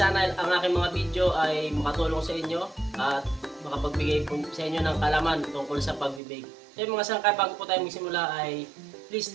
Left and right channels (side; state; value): left; drops out; at 6.2 s